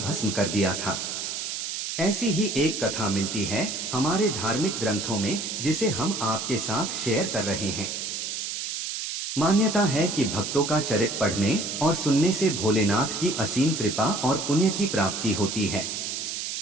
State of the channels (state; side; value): noise; right; hiss, 4 dB below the sound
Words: कर दिया था। ऐसी ही एक कथा मिलती है हमारे धार्मिक ग्रंथों में, जिसे हम आपके साथ शेयर कर रहे हैं। मान्यता है कि भक्तों का चरित्र पढ़ने और सुनने से भोलेनाथ की असीम कृपा और पुण्य की प्राप्ति होती है।